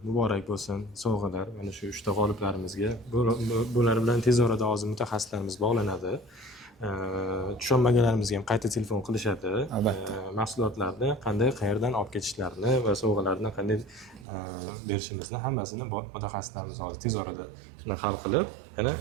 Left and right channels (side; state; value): left; drops out; at 14.2 s